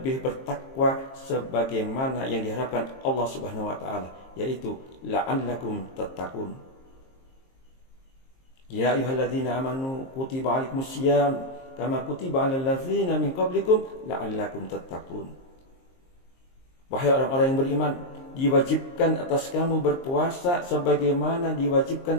bertakwa sebagaimana yang diharapkan Allah Subhanahu wa taala, yaitu la'allakum tattaqun. Ya ayyuhalladzina amanu kutiba 'alaikumusiyam kama kutiba 'alal ladzina min qablikum la'allakum tattaqun. Wahai orang-orang yang beriman, diwajibkan atas kamu berpuasa sebagaimana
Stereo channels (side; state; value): right; late; 23 ms